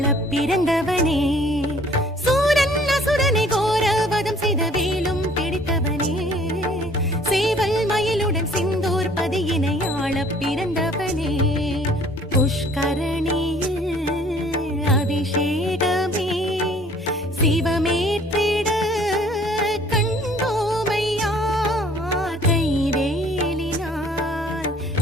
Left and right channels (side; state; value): both; normal; correlation 0.55